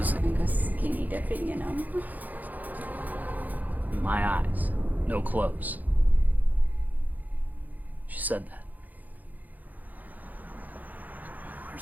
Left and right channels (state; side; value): late; left; 0.082 ms